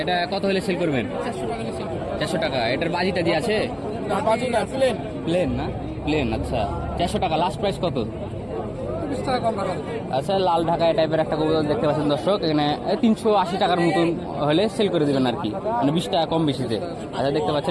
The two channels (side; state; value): both; identical; correlation 1.00